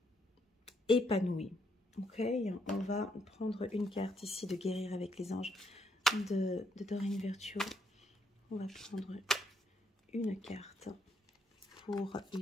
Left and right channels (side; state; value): both; normal; correlation 0.74